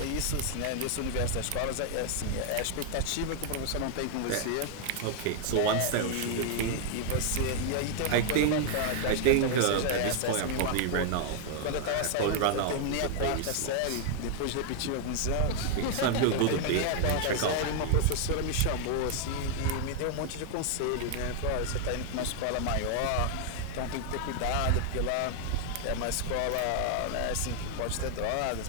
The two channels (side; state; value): both; different; correlation 0.00